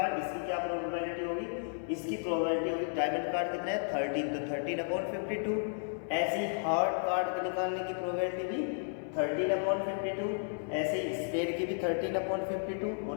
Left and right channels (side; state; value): right; silent; 56 dB below the other